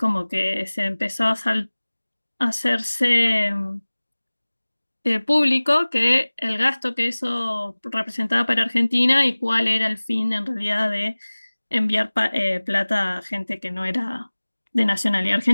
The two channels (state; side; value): inverted; both; correlation -1.00